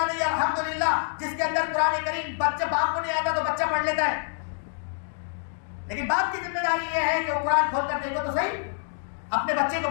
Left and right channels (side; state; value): right; silent; digital silence